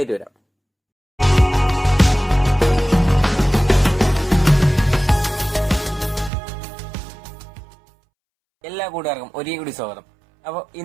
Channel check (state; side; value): drops out; left; at 6.3 s